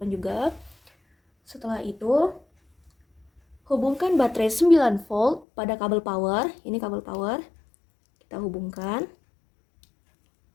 juga. Setelah itu, hubungkan baterai 9 volt pada kabel power. Ini kabel power. Kita hubungkan.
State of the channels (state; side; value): drops out; right; at 5.5 s